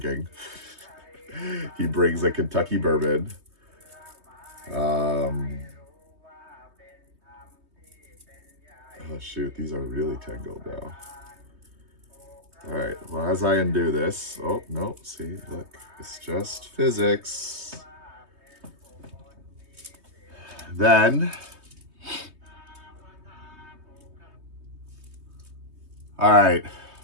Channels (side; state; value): left; late; 3.2 ms